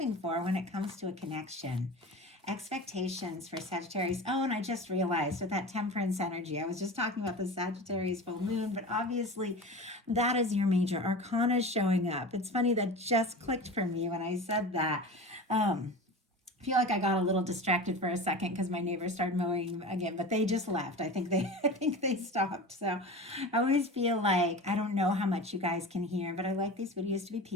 for when it comes to a connection. Expectations for Sagittarius. Oh, and I just realized with that Temperance energy, I was just talking about the Sagittarius full moon, but obviously that is your major arcana showing up. It's funny, that just clicked for me when I said that. I feel like I got a little distracted for a second because my neighbors started mowing again, but they just left. I think they stopped. So I always feel like I don't know how much you guys can hear, but I like these videos to be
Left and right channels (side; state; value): both; normal; correlation 0.32